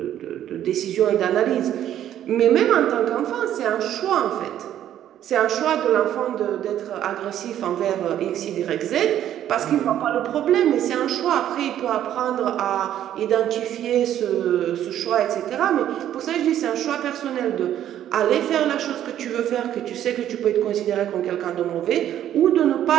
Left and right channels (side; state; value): left; quieter; 11.3 dB